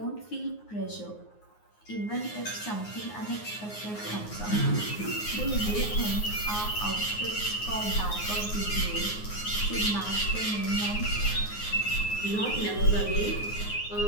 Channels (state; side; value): late; right; 9.5 ms